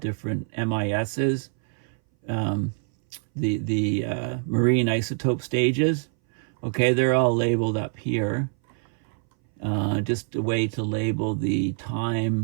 MISs, the marine isotope stages. Okay, they're all labeled up here. Just a way to label the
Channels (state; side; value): silent; left; 60 dB below the other